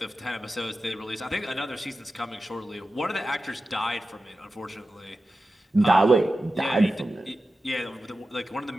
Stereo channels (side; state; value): both; normal; correlation 0.93